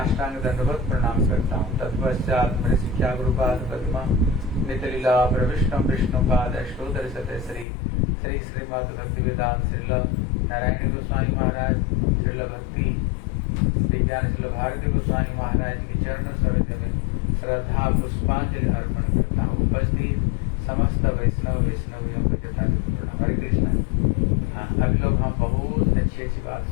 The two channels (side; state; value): right; drops out; at 7.7 s